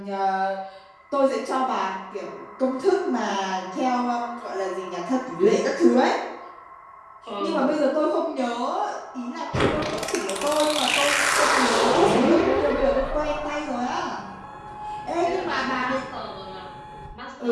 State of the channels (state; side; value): identical; both; correlation 1.00